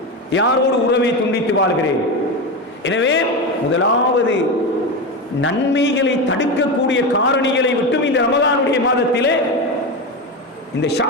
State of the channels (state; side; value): normal; both; correlation 0.18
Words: யாரோடு உறவை துண்டித்து வாழ்கிறேன். எனவே முதலாவது நன்மைகளை தடுக்கக்கூடிய காரணிகளை விட்டும் இந்த ரமலானுடைய மாதத்திலே, இந்த